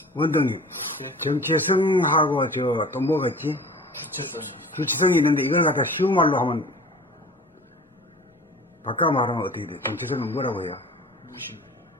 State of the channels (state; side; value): normal; both; correlation 0.42